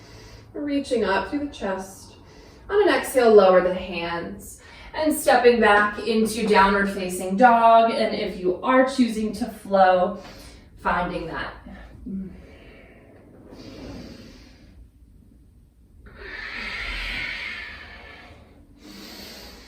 Reaching up through the chest. On an exhale, lower the hands. And stepping back into downward facing dog. And if you are choosing to flow, finding that.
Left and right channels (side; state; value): both; identical; correlation 1.00